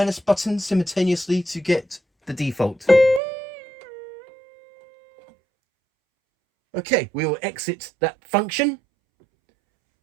button simultaneously to get the default. Okay, we will exit that function.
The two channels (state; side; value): drops out; left; at 3.2 s